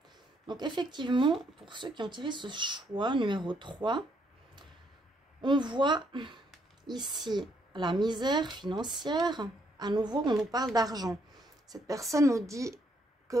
Donc effectivement, pour ceux qui ont tiré ce choix numéro 3, on voit ici la misère financière. À nouveau, on nous parle d'argent. Cette personne nous dit que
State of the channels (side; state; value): both; normal; correlation 0.72